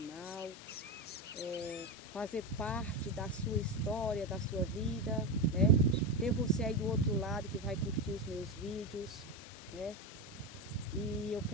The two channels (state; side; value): normal; both; correlation 0.15